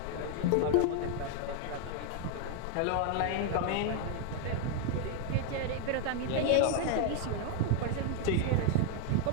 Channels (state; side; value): different; both; correlation 0.00